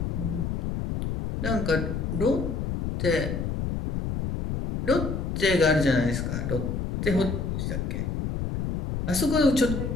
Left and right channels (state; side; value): noise; left; rumble, 2 dB below the sound